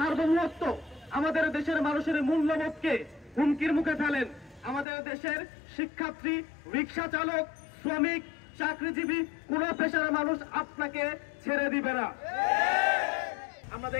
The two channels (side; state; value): right; drops out; at 4.9 s